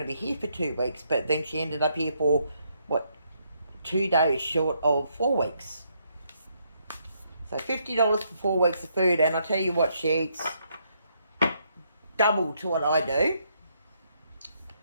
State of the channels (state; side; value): inverted; both; correlation -0.74